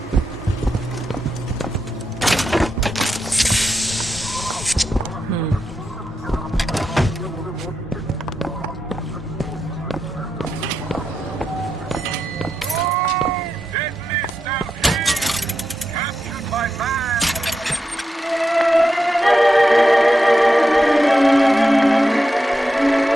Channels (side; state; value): both; normal; correlation 0.87